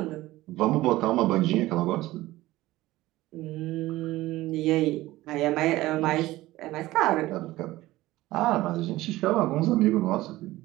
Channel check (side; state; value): left; quieter; 17.3 dB